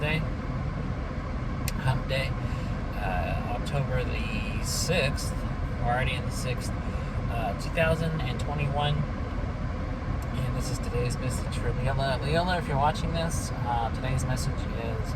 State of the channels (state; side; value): identical; both; correlation 1.00